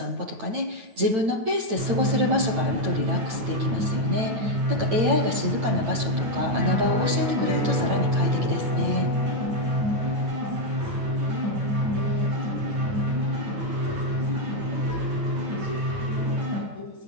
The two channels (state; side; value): late; left; 8.9 ms